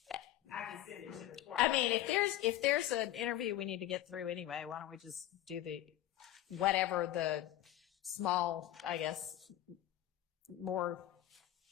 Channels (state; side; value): quieter; right; 13.7 dB